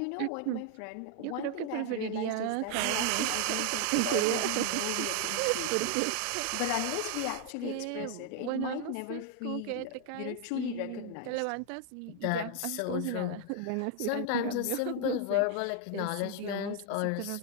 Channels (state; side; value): different; both; correlation 0.00